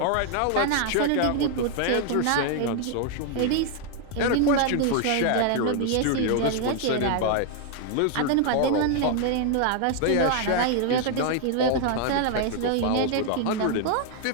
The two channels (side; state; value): both; different; correlation 0.00